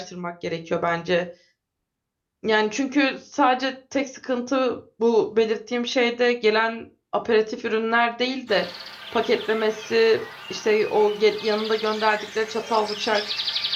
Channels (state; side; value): identical; both; correlation 1.00